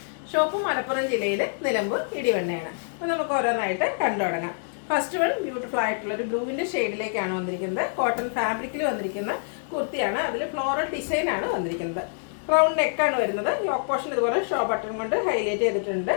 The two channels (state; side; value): silent; right; digital silence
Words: ഷോപ്പ് മലപ്പുറം ജില്ലയിൽ നിലമ്പൂർ ഇടിവണ്ണയാണ്. അപ്പോൾ നമുക്ക് ഓരോന്നായിട്ട് കണ്ടു തുടങ്ങാം. ഫസ്റ്റ് വൺ ബ്യൂട്ടിഫുൾ ആയിട്ടുള്ള ഒരു ബ്ലൂവിൻ്റെ ഷെയ്ഡിലേക്കാണ് വന്നിരിക്കുന്നത്. കോട്ടൺ ഫാബ്രിക്കിൽ വന്നിരിക്കുന്ന കുർത്തിയാണ്. അതിൽ ഫ്ലോറൽ ഡിസൈൻ ആണ് വന്നിരിക്കുന്നത്. റൗണ്ട് നെക്കാണ് വരുന്നത്. യോക്ക് പോർഷൻ ഇതുപോലെ ഷോ ബട്ടൺ കൊണ്ട് ഹൈലൈറ്റ് ചെയ്തിട്ടുണ്ട്.